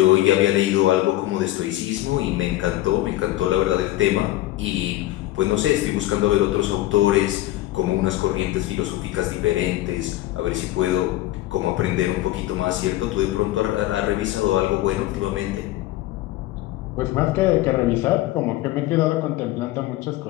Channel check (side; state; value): right; quieter; 15.9 dB